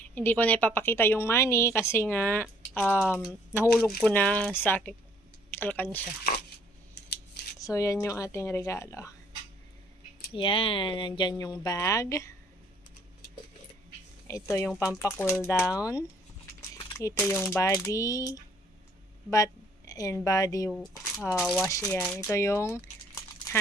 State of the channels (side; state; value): both; normal; correlation 0.62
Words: hindi ko na ipapakita yung money kasi nga nahulog ko na sa aking alkansya. So, yan yung ating regalo. Yan. Nandyan yung bag. Ito yung pampa-cool down. Ito yung body bath and body wash yan. Ito yung